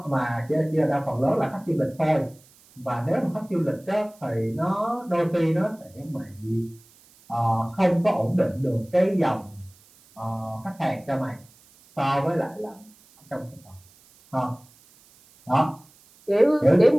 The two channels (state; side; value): noise; right; hiss, 28 dB below the sound